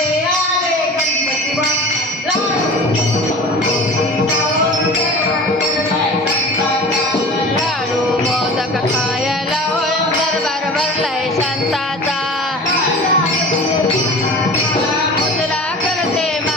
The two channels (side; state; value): both; normal; correlation 0.38